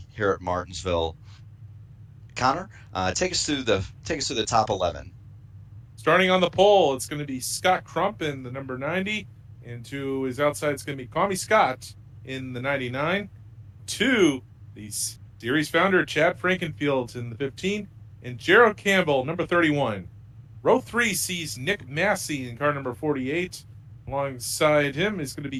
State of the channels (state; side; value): identical; both; correlation 1.00